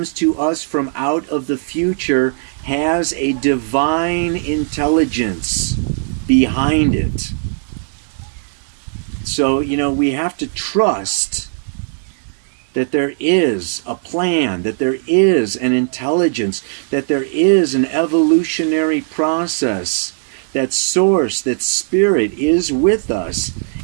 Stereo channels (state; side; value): silent; left; digital silence